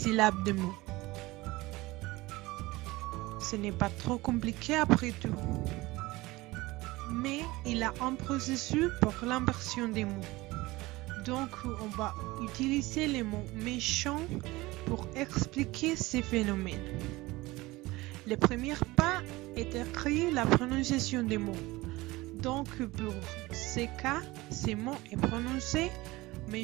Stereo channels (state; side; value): quieter; left; 20.4 dB